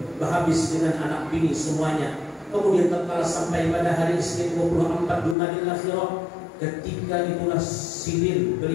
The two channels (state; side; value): drops out; right; at 5.4 s